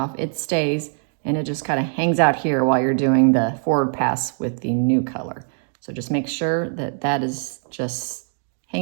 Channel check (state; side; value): silent; left; 57 dB below the other